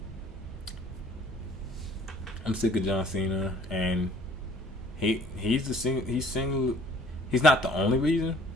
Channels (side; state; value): both; normal; correlation 0.56